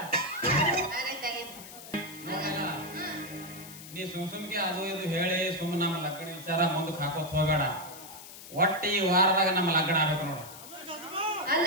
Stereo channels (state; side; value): noise; left; hiss, 15 dB below the sound